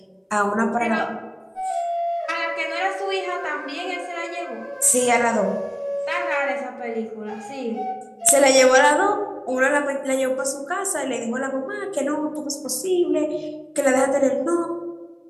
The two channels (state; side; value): identical; both; correlation 1.00